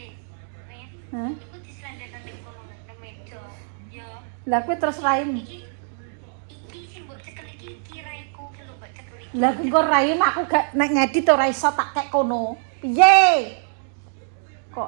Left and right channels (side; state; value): left; silent; 63 dB below the other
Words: Hah? Iku diselendeno ning kono nang meja. Ya. Lah kowe terus raim. Iki sing mbok cekel iki kiraiku ki lho mbok cekel iki. Lah engko raim aku gak nek ngedit ora iso tak kek kono. Piye?